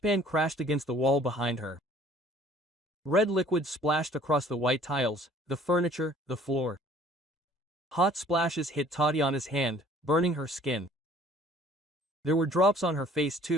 crashed against the wall behind her. Red liquid splashed across the white tiles, the furniture, the floor. Hot splashes hit Tatiana's hand, burning her skin. There were drops on her face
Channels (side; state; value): both; normal; correlation 0.55